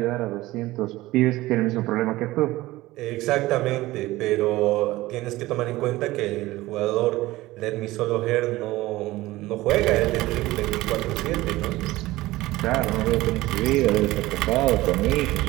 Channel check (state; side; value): quieter; left; 18.2 dB